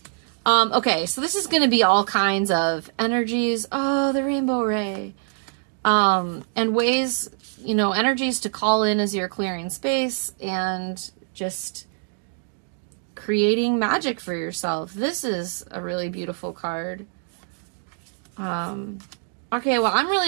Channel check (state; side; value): silent; left; digital silence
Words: Okay, so this is going to be all kinds of energies. Oh, the rainbow ray. And ways, you know, energies to call in as you're clearing space and just creating magic for yourself. This is a really beautiful card. Okay, well, I'm